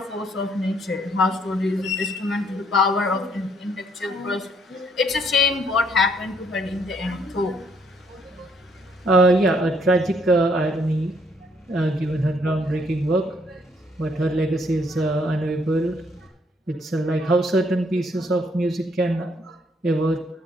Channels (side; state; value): both; normal; correlation 0.68